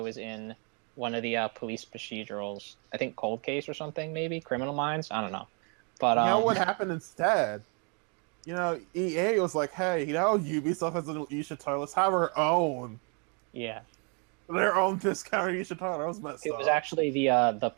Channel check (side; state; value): left; quieter; 35.6 dB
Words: is in one of the police procedurals. I think Cold Case or something, maybe Criminal Minds. I don't know. But you know what happened instead? EA was like, "Hey, Ubisoft has an Aisha Tyler. Let's have her own." Yeah. Their own discounted Aisha Tyler. That was messed up. It was actually